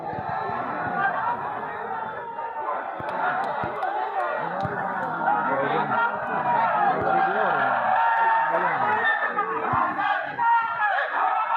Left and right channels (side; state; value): both; identical; correlation 1.00